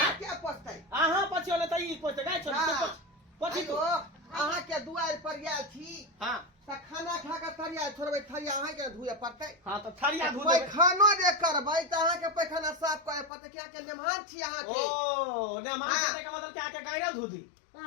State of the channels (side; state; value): right; drops out; at 13.3 s